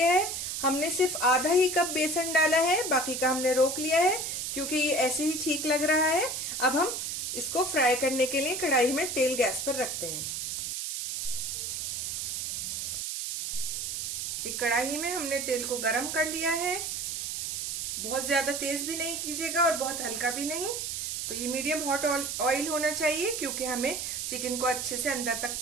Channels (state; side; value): noise; right; hiss, 3 dB below the sound